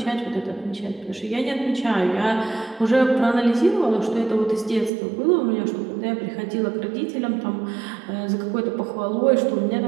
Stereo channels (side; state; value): left; drops out; at 4.9 s